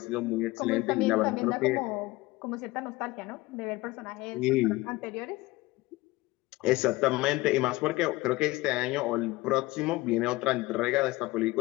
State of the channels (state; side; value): quieter; right; 20.5 dB